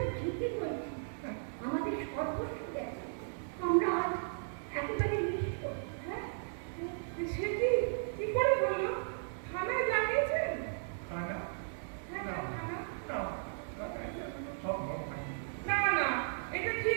ঠিকই বলছি। আমাদের সর্বস্ব গেছে। আমরা আজ একেবারে নিঃস্ব। হ্যাঁ, সে কি করে বললো? থানায় জানিয়েছেন? খানা হ্যাঁ না হ্যাঁ, থানা। না সম্ভব হয় না না, এটা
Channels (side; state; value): left; silent; digital silence